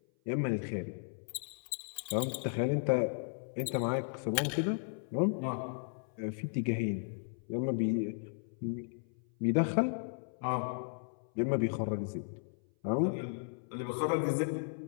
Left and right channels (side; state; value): right; silent; 54 dB below the other